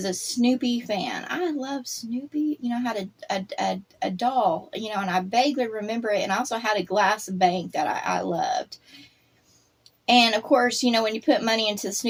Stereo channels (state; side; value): identical; both; correlation 1.00